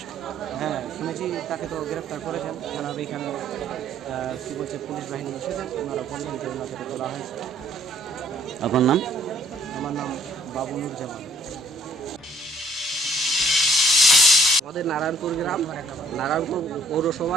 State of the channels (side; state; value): both; normal; correlation 0.61